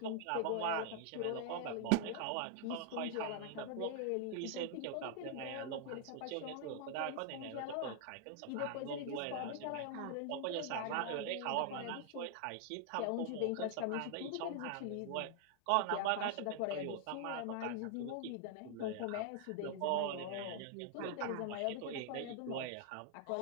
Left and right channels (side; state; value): both; different; correlation 0.00